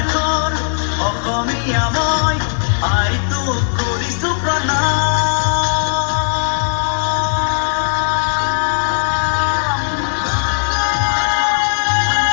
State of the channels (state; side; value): silent; right; digital silence